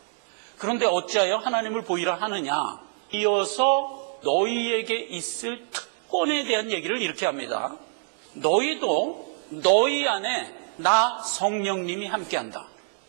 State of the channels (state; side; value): silent; left; digital silence